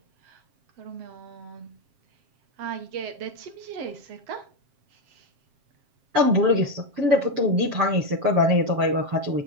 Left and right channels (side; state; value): left; late; 7.5 ms